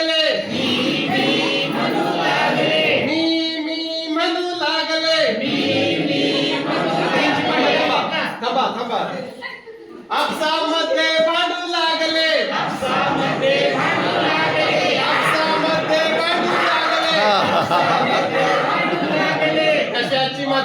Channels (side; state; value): both; identical; correlation 1.00